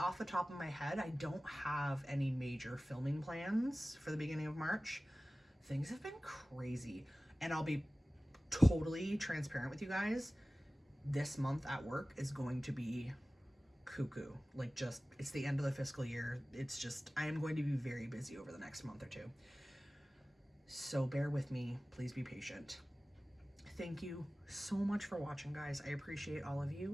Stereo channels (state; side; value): normal; both; correlation 0.97